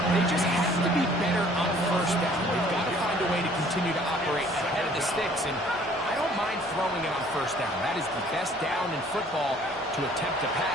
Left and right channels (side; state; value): both; normal; correlation 0.56